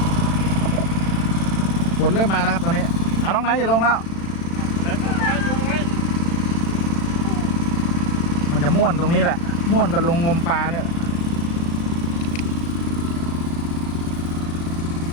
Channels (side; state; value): right; late; 36 ms